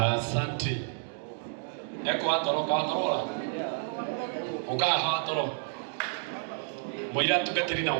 Eko atoro katorola. Ukaha atoro. Moira tugatirina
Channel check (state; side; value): silent; left; 58 dB below the other